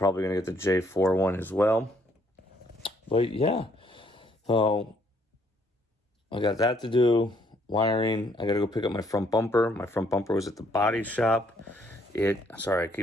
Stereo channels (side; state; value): both; normal; correlation 0.67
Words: going to get the J4 one as well. But yeah, so I got that to do. Wiring. I got to go pick up my front bumper. My front bumper was at the body shop. Sorry, I